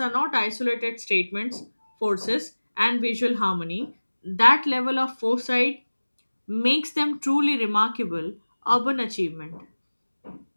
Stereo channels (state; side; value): inverted; both; correlation -1.00